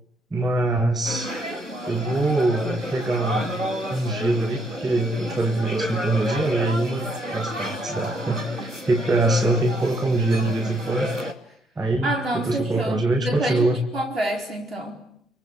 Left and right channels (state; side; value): normal; both; correlation 0.72